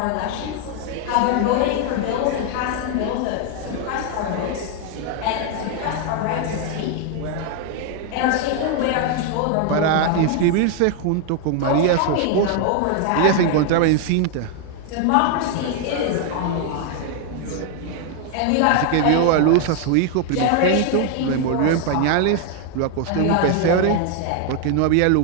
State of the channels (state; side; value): different; both; correlation 0.00